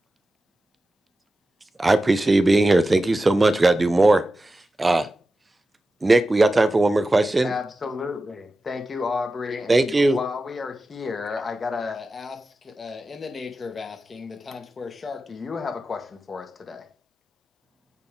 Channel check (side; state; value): both; normal; correlation 0.93